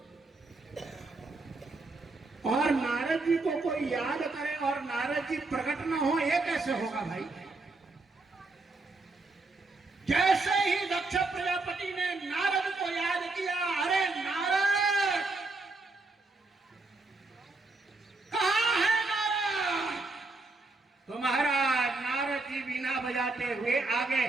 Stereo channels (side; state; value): left; quieter; 3.4 dB